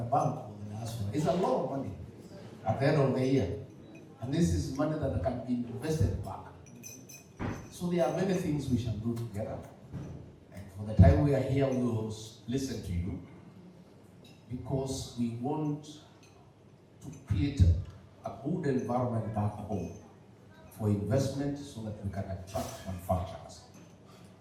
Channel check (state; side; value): identical; both; correlation 1.00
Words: bank for the diaspora, is a lot of money at the end of the year. And this is money that can be invested back. So there are many things we shall do together. And for the time we are here, we will listen to you because we want to create a good environment back home for investment so that we can attract manufacturers.